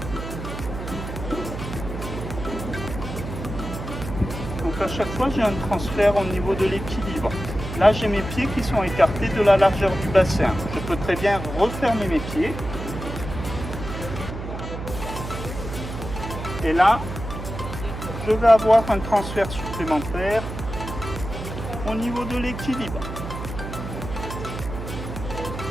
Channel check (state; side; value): noise; right; hum, 8 dB below the sound